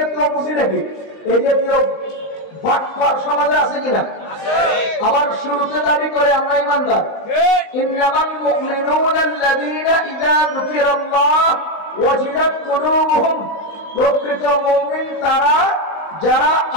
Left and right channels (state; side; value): late; right; 19 ms